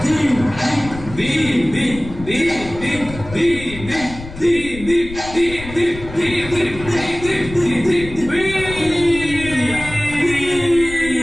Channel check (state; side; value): noise; left; rumble, 13 dB below the sound